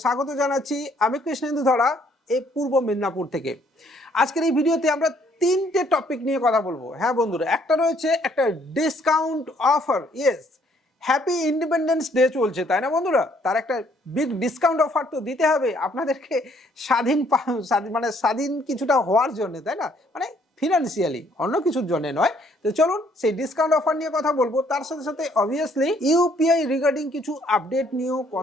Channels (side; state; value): both; normal; correlation 0.65